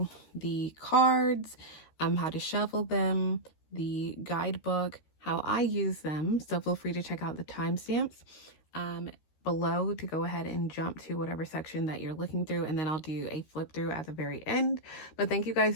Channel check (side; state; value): right; late; 13 ms